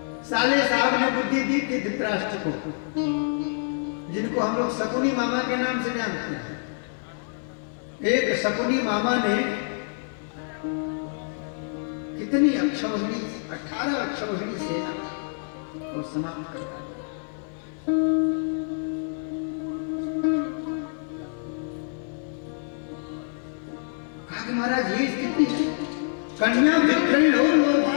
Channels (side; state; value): right; silent; digital silence